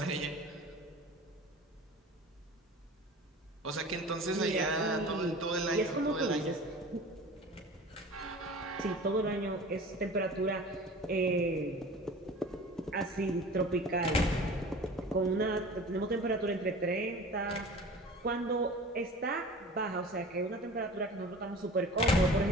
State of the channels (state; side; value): normal; both; correlation 0.40